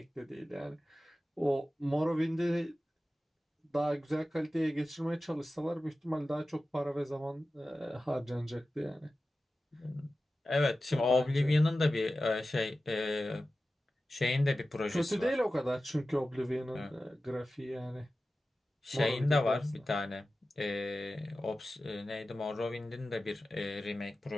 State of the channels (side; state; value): both; normal; correlation 0.94